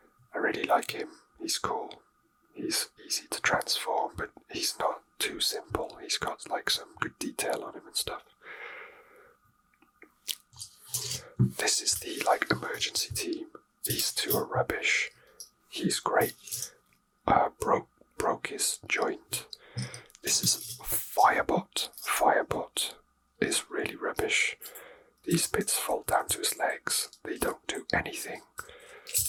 I really like him. He's cool. He's easy to transform, but he's not too simple. He's got like some good detail on him and stuff. This is the like emergency team. These two are rubbish. He's great. Broke his joint. This is Firebot. Firebot is really rubbish. These bits fall down to his legs. They don't do anything.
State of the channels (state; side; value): identical; both; correlation 1.00